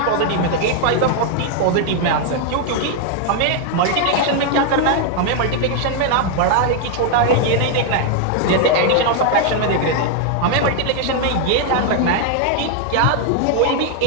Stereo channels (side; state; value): both; different; correlation 0.00